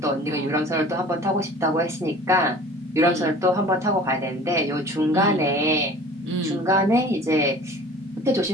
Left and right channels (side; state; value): both; normal; correlation 0.44